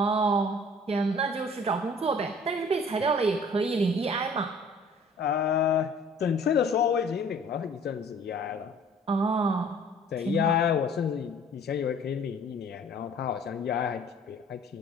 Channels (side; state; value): both; normal; correlation 0.52